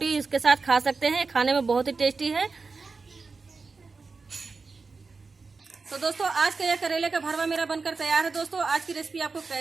इसके साथ खा सकते हैं। खाने में बहुत ही टेस्टी है। तो दोस्तों आज का यह करेले का भरवा मेरा बनकर तैयार है दोस्तों। आज की रेसिपी आपको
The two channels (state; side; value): quieter; left; 4.4 dB